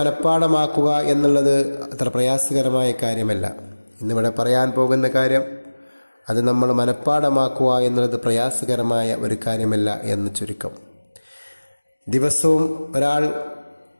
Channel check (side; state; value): both; inverted; correlation -1.00